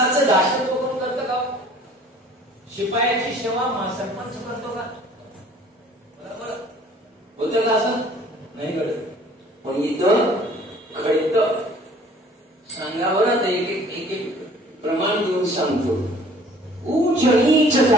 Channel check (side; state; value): both; normal; correlation 0.52